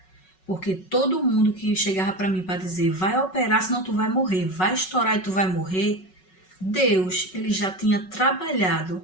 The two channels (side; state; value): right; late; 5.4 ms